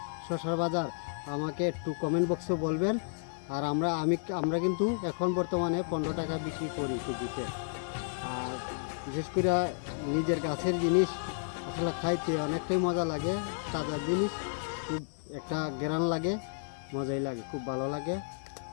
শসার বাজার, আমাকে একটু কমেন্ট বক্সে বলবেন। আর আমরা কিন্তু এখন বর্তমানে 15 টাকা বিক্রি করি কেজিতে। আর বিশেষ করে নিজের গাছের জিনিস আসলে খাইতে অনেকটাই মজা লাগে। তাজা জিনিস খুব একটা গ্রান লাগে, মজাই লাগে, খুব ভালো লাগে,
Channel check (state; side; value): silent; right; digital silence